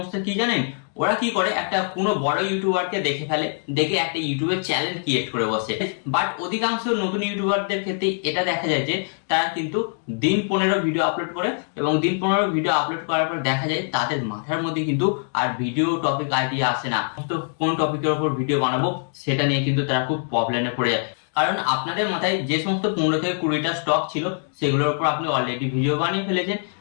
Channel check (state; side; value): silent; right; 63 dB below the other